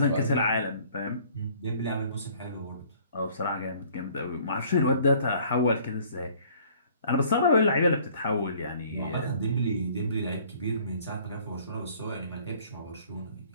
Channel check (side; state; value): both; inverted; correlation -0.55